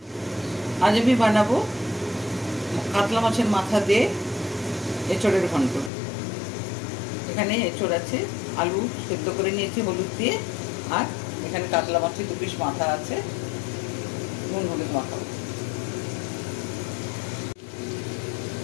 আজ আমি বানাবো কাতলা মাছের মাথা দিয়ে এঁচড়ের ঘন্ট। এখানে এঁচড় আছে, আলু সেদ্ধ করে নিয়েছি হলুদ দিয়ে, আর এখানে কাতলা মাছের 2 পিস মাথা আছে, নুন হলুদ মাখাবো।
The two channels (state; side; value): drops out; right; at 5.9 s